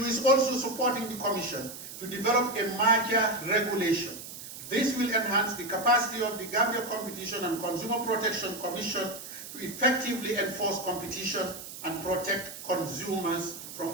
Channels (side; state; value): right; noise; hiss, 12 dB below the sound